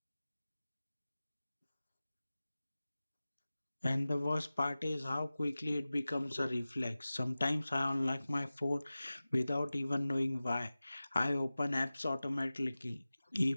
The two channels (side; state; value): both; inverted; correlation -0.97